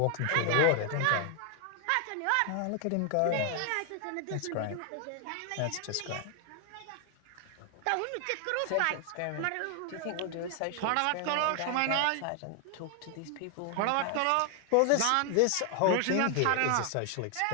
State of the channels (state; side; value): different; both; correlation 0.00